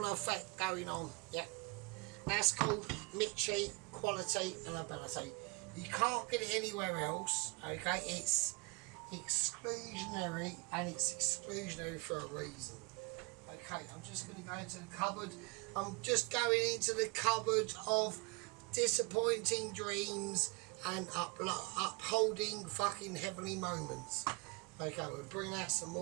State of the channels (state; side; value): quieter; left; 29.6 dB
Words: effect going on, yeah. That's called Mitchi quality and ability. You can't get it anywhere else, okay? It's exclusionary, and it's exclusionary for a reason. Okay, I'm just going to go into the cupboard. I'm just going into the cupboard of disappointing dreams and upholding fucking heavenly moments. Okay, we'll bring out some